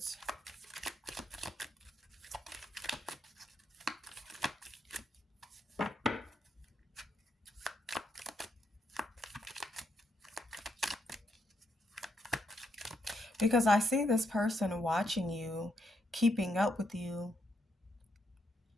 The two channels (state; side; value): normal; both; correlation 0.78